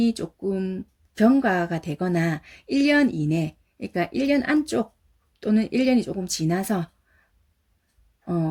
조금 경과가 되거나 1년 이내, 그러니까 1년 안쪽 또는 1년이 조금 지나서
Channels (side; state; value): both; identical; correlation 1.00